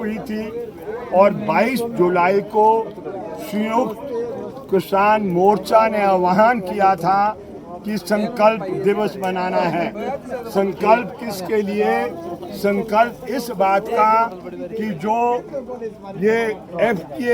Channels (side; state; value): both; identical; correlation 1.00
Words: थी और 22 जुलाई को संयुक्त किसान मोर्चा ने आह्वान किया था कि संकल्प दिवस मनाना है। संकल्प किसके लिए? संकल्प इस बात का कि जो ये